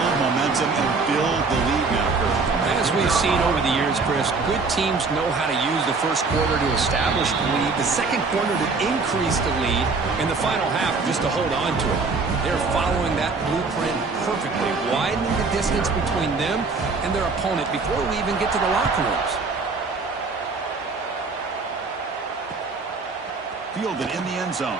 momentum and build the lead now, Kurt. As we've seen over the years, Chris, good teams know how to use the first quarter to establish the lead, the second quarter to increase the lead, and the final half just to hold on to it. They're following that blueprint perfectly, widening the distance between them and their opponent before we even get to the locker rooms. Fielded in the end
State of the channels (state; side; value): quieter; left; 4.2 dB